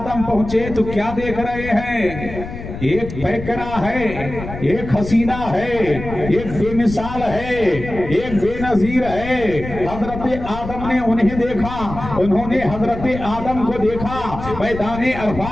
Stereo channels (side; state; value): left; noise; rumble, 10 dB below the sound